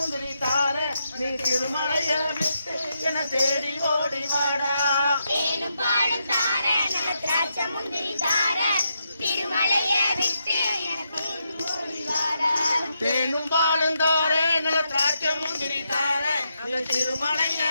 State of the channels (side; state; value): both; inverted; correlation -0.82